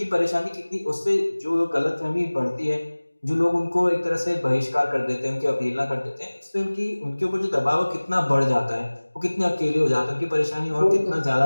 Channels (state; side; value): inverted; both; correlation -1.00